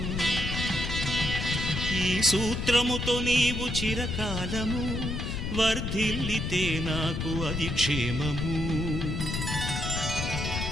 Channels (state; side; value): noise; left; rumble, 3 dB below the sound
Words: ఈ సూత్రముతో నీవు చిరకాలము వర్ధిల్లితే నాకు అది క్షేమము